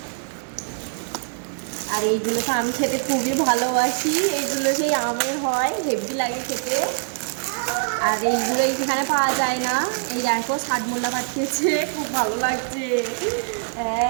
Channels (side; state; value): left; silent; 63 dB below the other